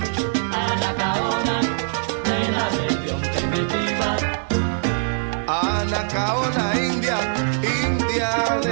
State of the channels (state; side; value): silent; left; digital silence